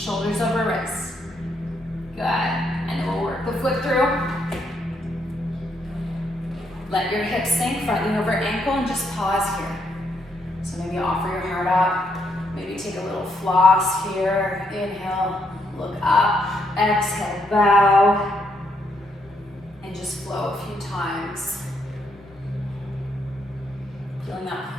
over wrists. Good, and then we'll work the foot through. Let your hips sink, front knee over ankle, and just pause here. So maybe offer your heart up, maybe take a little floss here, inhale, look up, exhale, bow, and just flow a few times. Feeling that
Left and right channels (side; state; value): both; normal; correlation 0.76